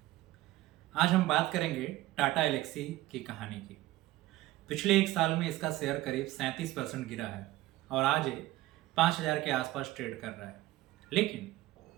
आज हम बात करेंगे टाटा एलेक्सी की कहानी की। पिछले एक साल में इसका शेयर करीब 37% गिरा है और आज ये 5,000 के आसपास ट्रेड कर रहा है। लेकिन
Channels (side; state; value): left; quieter; 17.1 dB